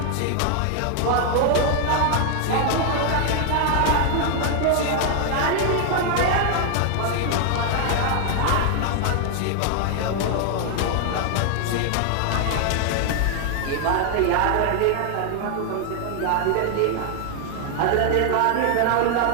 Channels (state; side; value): different; both; correlation 0.00